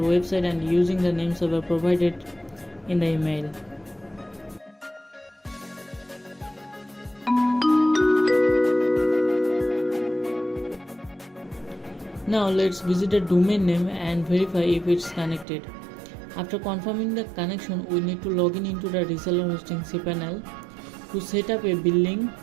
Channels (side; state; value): left; drops out; at 15.5 s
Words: and using the name server provided in the email. Now let's visit the domain name and verify if it's connected. After confirming the connection, we need to log in into the reseller hosting cPanel to set up a billing